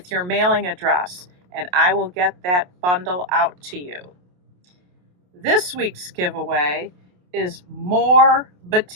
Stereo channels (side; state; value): left; late; 28 ms